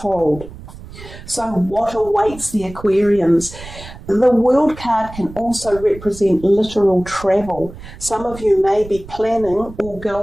So what awaits the Aquarians? The World card can also represent literal travel. Some of you may be planning or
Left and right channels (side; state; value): right; noise; rumble, 15 dB below the sound